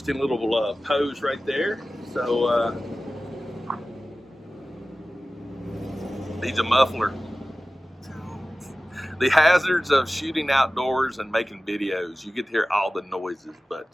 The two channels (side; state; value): both; normal; correlation 0.96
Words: little pose right there. So needs a muffler. The hazards of shooting outdoors and making videos. You get to hear all the noises,